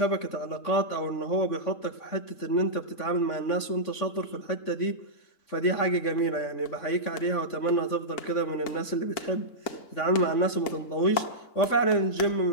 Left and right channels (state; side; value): late; right; 3.5 ms